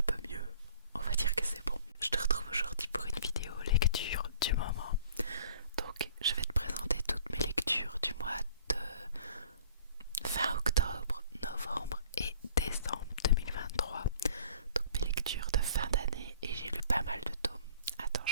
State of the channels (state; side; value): inverted; both; correlation -0.51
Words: peu mieux. On va dire que c'est bon. Je te retrouve aujourd'hui pour une vidéo lecture du moment. Donc, je vais te présenter toutes mes lectures du mois de fin octobre, novembre et décembre 2023. Donc mes lectures de fin d'année et j'ai lu pas mal de tomes. Attends,